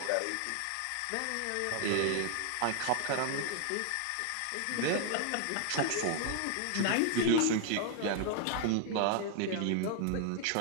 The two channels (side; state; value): both; different; correlation 0.00